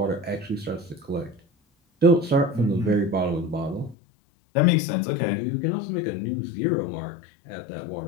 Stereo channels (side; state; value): right; drops out; at 4.0 s